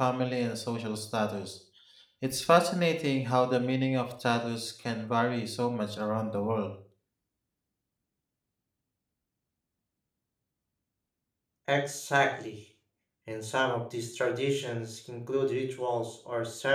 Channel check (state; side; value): identical; both; correlation 1.00